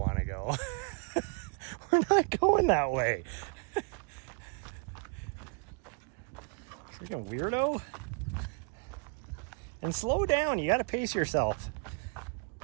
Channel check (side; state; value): left; quieter; 36.5 dB